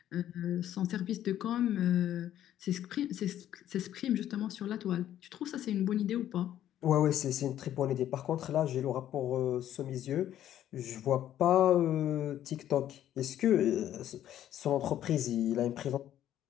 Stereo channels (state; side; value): quieter; right; 11.6 dB